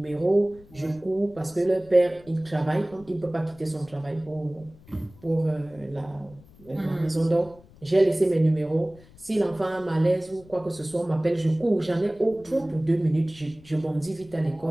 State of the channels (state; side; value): noise; left; rumble, 24 dB below the sound